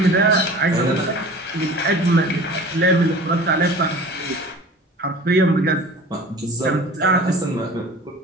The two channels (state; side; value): normal; both; correlation 0.41